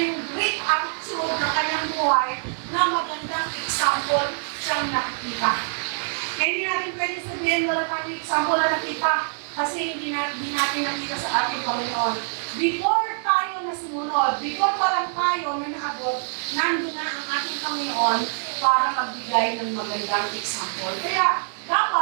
great attitude ng Kanyang buhay na magandang example siyang nakikita. Kaya hindi natin pwede sabihin wala kang example na nakita kasi hindi natin nakita sa ating Panginoon. Before tayo na sumunod, before pa lang tayo na naabot, nandun na ang ating Panginoon para magbigay ng magandang example. Kaya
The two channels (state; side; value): silent; left; digital silence